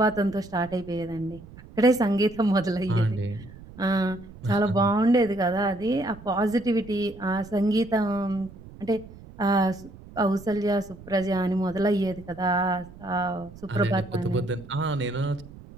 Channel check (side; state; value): right; noise; rumble, 18 dB below the sound